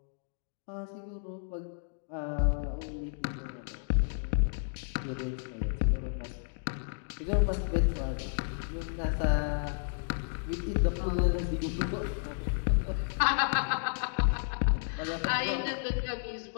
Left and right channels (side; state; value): right; silent; digital silence